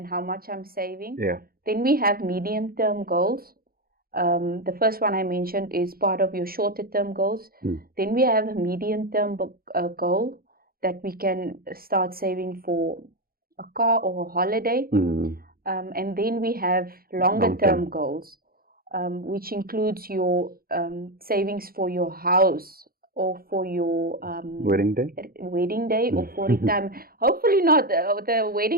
how much I'm saving. Then we have medium-term goals. The first one I mentioned is part of your shorter-term goals. Then we have a medium-term goal that we can start saving for a car or a holiday. And then we have longer-term goals, which includes your savings for your house, or for your wedding day, or for retirement. Hopefully not. The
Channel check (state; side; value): late; left; 0.43 ms